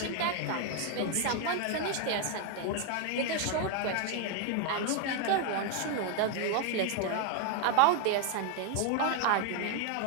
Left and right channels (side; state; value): both; different; correlation 0.01